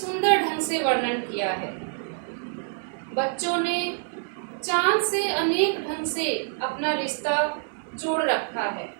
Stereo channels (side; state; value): left; silent; digital silence